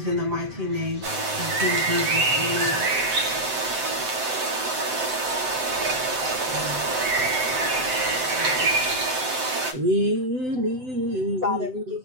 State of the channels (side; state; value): left; late; 7.8 ms